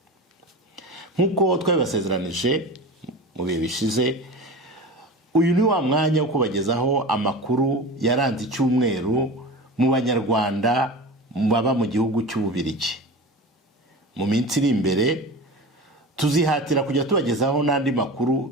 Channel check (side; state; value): both; normal; correlation 0.31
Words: Nk'uko twabibasezeranije mu bihe bishize, uyu ni wa mwanya wo kubagezaho amakuru yaranze icyumweru mu banyarwanda baba mu gihugu cy'Ububiligi. Mu minsi iri imbere tuzihatira kujya tubagezaho n'andi